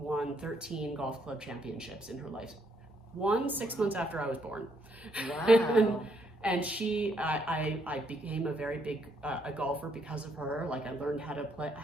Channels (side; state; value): both; normal; correlation 0.72